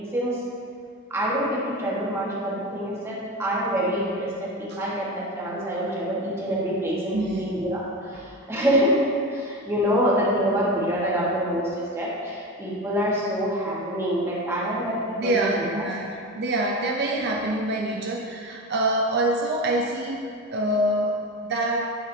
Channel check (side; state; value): both; normal; correlation 0.24